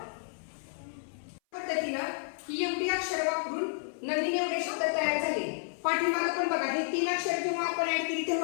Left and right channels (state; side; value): silent; right; 56 dB below the other